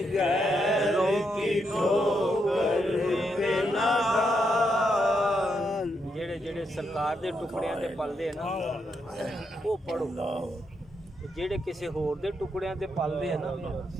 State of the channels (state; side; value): normal; both; correlation 0.80